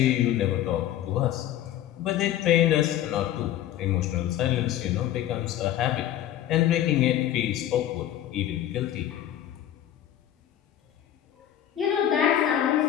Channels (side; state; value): right; quieter; 11.9 dB